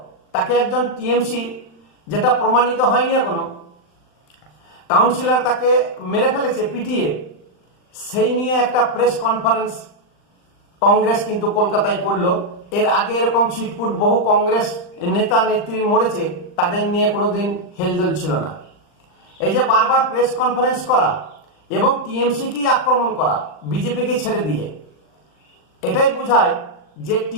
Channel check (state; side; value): late; right; 39 ms